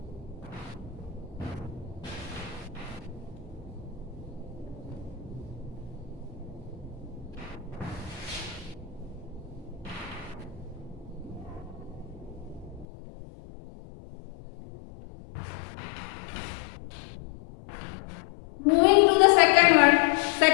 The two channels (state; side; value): drops out; right; at 12.9 s